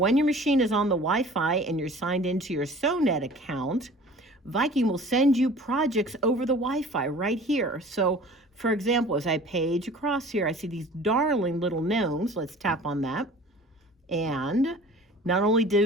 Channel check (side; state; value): both; normal; correlation 0.45